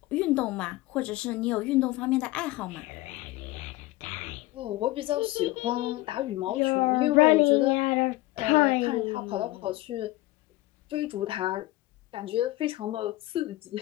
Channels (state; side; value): quieter; right; 18.2 dB